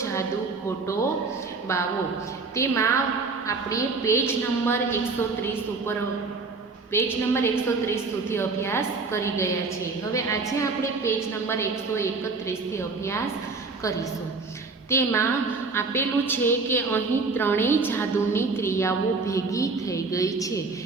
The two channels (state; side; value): quieter; left; 4.1 dB